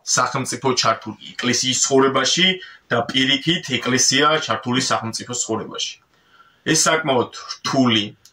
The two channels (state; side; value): identical; both; correlation 1.00